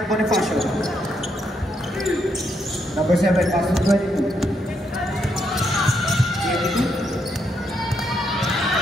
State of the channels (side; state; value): both; normal; correlation 0.77